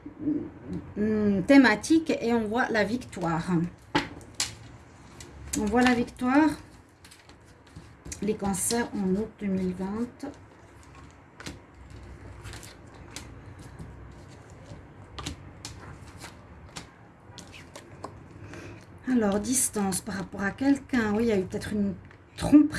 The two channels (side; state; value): both; identical; correlation 1.00